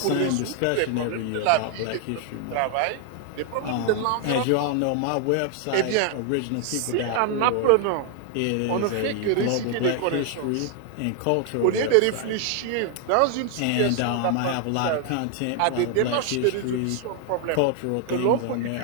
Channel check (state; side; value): different; both; correlation 0.00